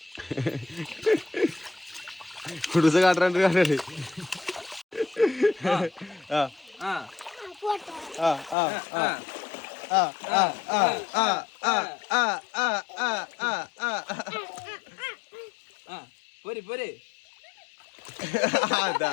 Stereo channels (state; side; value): drops out; right; at 8.6 s